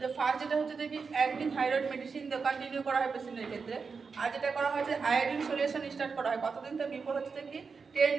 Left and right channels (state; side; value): quieter; left; 5.1 dB